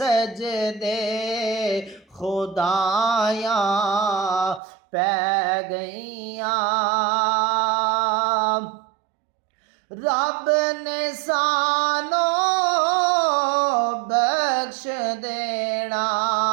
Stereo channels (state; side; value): drops out; left; at 4.6 s